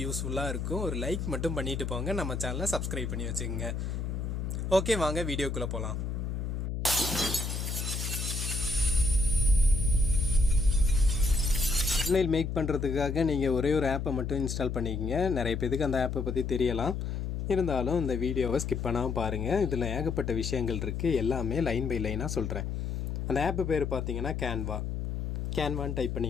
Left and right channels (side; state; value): left; noise; hum, 3 dB below the sound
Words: யூஸ்ஃபுல்லாக இருக்கும். ஒரு லைக் மட்டும் பண்ணிட்டு போங்க. நம்ம சேனலை சப்ஸ்கிரைப் பண்ணி வச்சுக்கோங்க. ஓகே, வாங்க வீடியோக்குள்ளே போகலாம். தம்ப்நெயில் மேக் பண்ணுறதுக்காக நீங்கள் ஒரே ஒரு ஆப்பை மட்டும் இன்ஸ்டால் பண்ணிக்கங்க. நிறைய பேருக்கு அந்த ஆப்பை பற்றி தெரியலாம். இருந்தாலும் இந்த வீடியோவை ஸ்கிப் பண்ணாமல் பாருங்கள். இதில் ஏகப்பட்ட விஷயங்கள் இருக்குது. எல்லாமே லைன் பை லைனாக சொல்கிறேன். அந்த ஆப்பு பேர் பார்த்தீங்கன்னா கேன்வான்னு டைப்